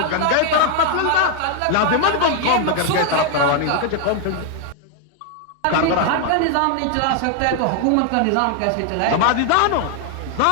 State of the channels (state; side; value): different; both; correlation 0.00